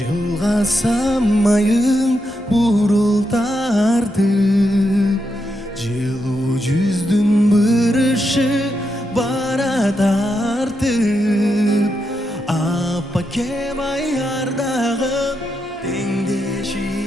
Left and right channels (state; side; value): normal; both; correlation 0.84